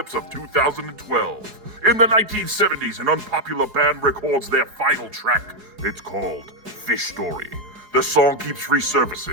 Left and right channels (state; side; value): late; left; 4.8 ms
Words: of 2012. In the 1970s, an unpopular band records their final track. It's called Fish Story. The song keeps